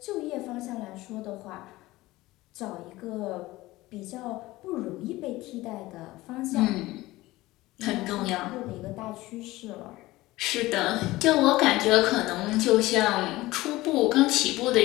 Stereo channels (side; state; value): right; quieter; 18.6 dB